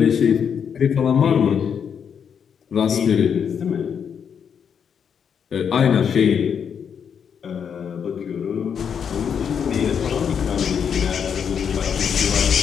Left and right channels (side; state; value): right; quieter; 7.4 dB